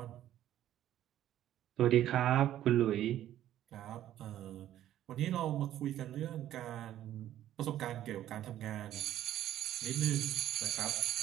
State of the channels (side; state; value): left; quieter; 12.4 dB